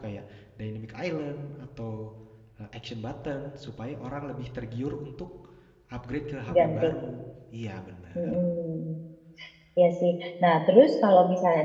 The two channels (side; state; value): both; identical; correlation 1.00